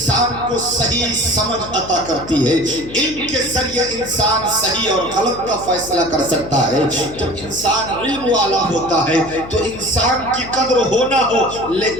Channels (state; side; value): noise; left; hum, 14 dB below the sound